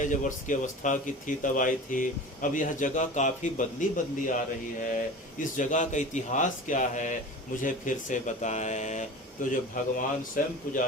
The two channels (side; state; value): both; normal; correlation 0.35